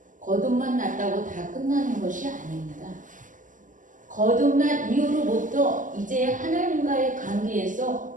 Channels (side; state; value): left; late; 0.38 ms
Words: 거듭만 났다고 다 끝나는 것이 아닙니다. 거듭난 이후로부터 이제 하나님과의